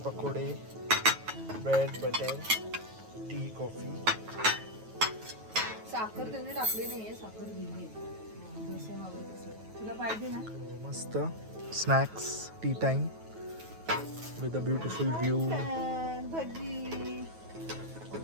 पकोडे, ब्रेड, बटर, टी, कॉफी. साखर त्यांनी टाकली नाहीये, साखर दिली जसं हवं तसं. तुला पाहिजे ना? मस्त snacks tea time with a beautiful view. भजी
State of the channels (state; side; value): late; left; 9.2 ms